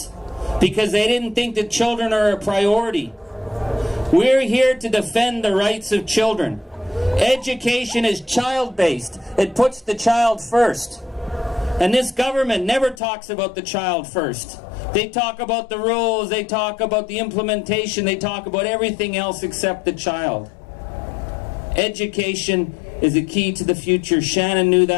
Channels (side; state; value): right; drops out; at 13.0 s